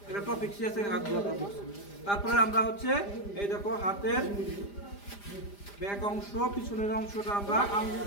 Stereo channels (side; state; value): right; late; 5.0 ms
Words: একটা টপিক শিখেছে হাত ধোয়া টপিক। তারপরে আমরা হচ্ছে এই দেখো হাতের ব্যাক অংশ পিছনের অংশটা আমরা আঙ্গুল